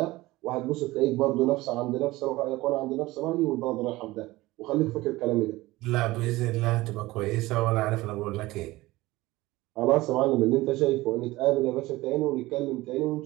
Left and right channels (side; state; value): left; quieter; 19.0 dB